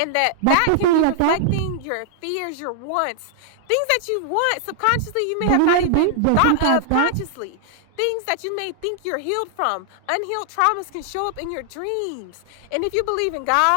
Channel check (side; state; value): both; different; correlation -0.01